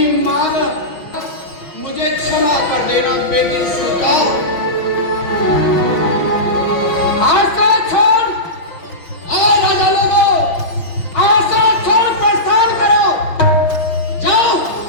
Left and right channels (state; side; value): late; right; 5.9 ms